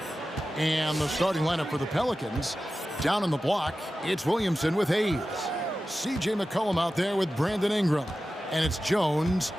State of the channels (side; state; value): both; normal; correlation 0.94